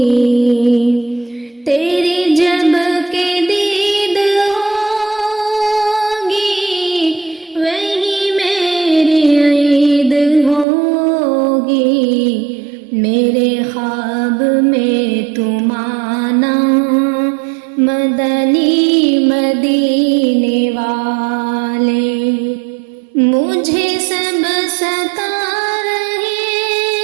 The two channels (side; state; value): left; drops out; at 10.7 s